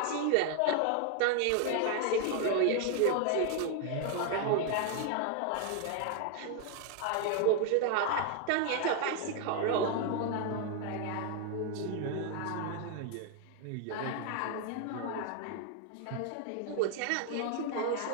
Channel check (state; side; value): different; both; correlation 0.00